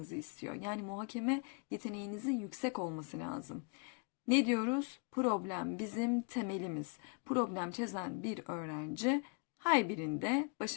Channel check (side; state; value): right; quieter; 37.1 dB